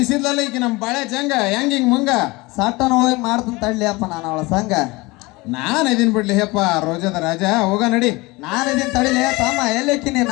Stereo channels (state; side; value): quieter; right; 23.1 dB